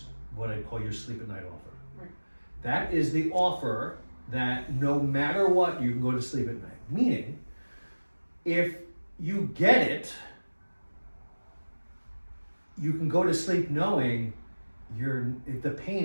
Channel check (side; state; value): both; inverted; correlation -1.00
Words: what I call your sleep at night offer. Right. That is the offer that no matter what, you can go to sleep at night. Meaning, if you get it, you can go to sleep knowing the